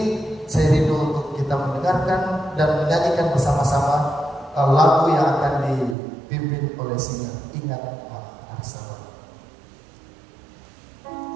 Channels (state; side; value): drops out; left; at 6.0 s